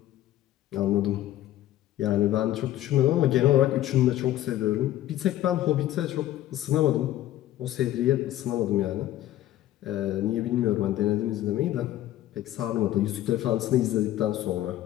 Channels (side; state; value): right; quieter; 13.7 dB